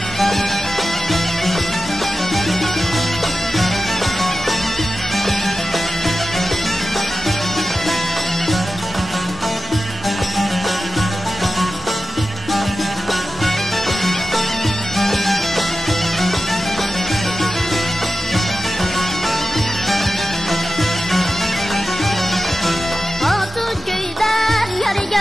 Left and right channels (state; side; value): normal; both; correlation 0.93